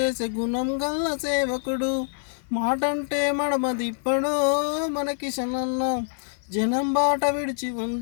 గుణం గల్ల సేవకుడు మాటంటే మడమ దిప్పడో మనకిశనన్న జనం బాట విడిచి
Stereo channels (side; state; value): right; silent; digital silence